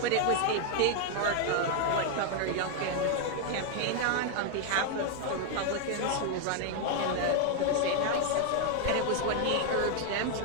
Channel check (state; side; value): different; both; correlation 0.00